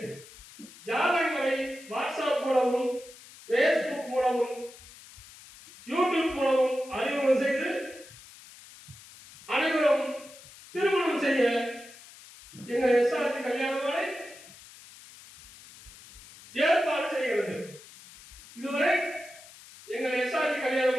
ஜாதகங்களை வாட்ஸ்அப் மூலமும் பேஸ்புக் மூலமும் யூடியூப் மூலமும் அறிமுகம் செய்து அனைவரும் திருமணம் செய்ய எங்கள் எஸ்ஆர்ஜி கல்யாண மாலை ஏற்பாடு செய்கிறது. இதுவரை எங்கள் எஸ்ஆர்ஜி கல்யாண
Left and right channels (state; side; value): noise; left; hiss, 20 dB below the sound